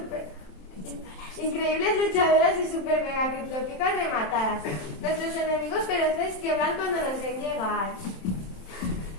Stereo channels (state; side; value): late; right; 27 ms